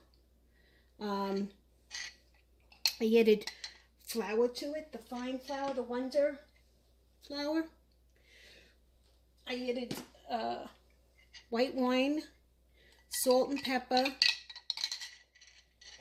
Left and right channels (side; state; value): both; identical; correlation 1.00